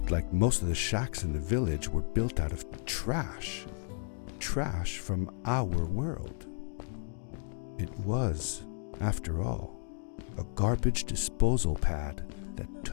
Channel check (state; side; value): silent; right; digital silence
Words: like most of the shacks in the village were built out of trash. Trash from our world. It was, after all, a garbage disposal pad that